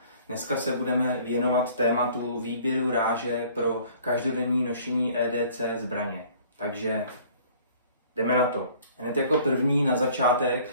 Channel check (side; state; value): both; inverted; correlation -0.53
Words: Dneska se budeme věnovat tématu výběru ráže pro každodenní nošení EDC zbraně. Takže jdeme na to. Hned jako první na začátek